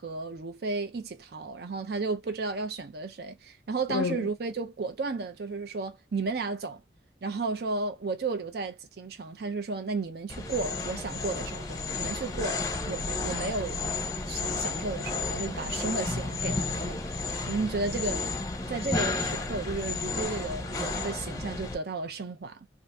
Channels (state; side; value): normal; both; correlation 0.25